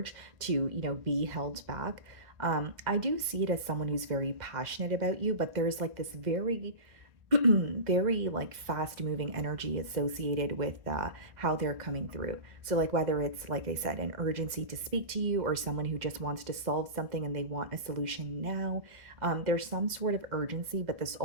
to, be held back. I do see it as someone who's very passionate about you, but there's like this very very like fast moving energy associated with how they're coming through. So, like, whether it's, like I said, an urgency to speak to you or someone who just wants to solve something and they want a solution now, there's some sort of urgency, but this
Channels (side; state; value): left; late; 2.0 ms